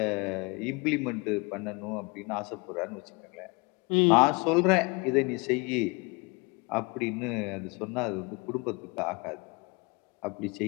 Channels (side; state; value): right; quieter; 28.5 dB